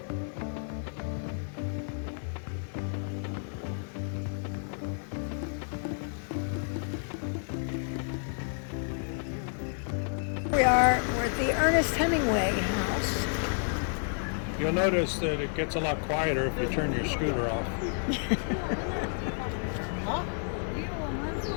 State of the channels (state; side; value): silent; right; 57 dB below the other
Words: We're at the Ernest Hemingway house. You'll notice that it gets a lot quieter if you turn your scooter off.